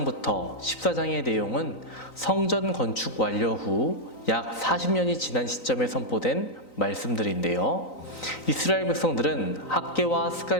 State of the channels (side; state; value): right; late; 3.9 ms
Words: 14장의 내용은 성전 건축 완료 후 약 40년이 지난 시점에 선포된 말씀들인데요. 이스라엘 백성들은 학개와